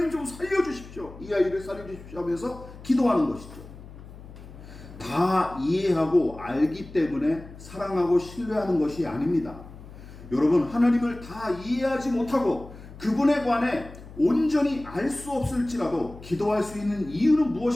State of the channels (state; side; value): noise; left; hum, 16 dB below the sound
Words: 좀 살려주십시오. 이 아이를 살려주십시오 하면서 기도하는 것이죠. 다 이해하고 알기 때문에 사랑하고 신뢰하는 것이 아닙니다. 여러분, 하나님을 다 이해하지 못하고 그분에 관해 온전히 알 수 없을지라도 기도할 수 있는 이유는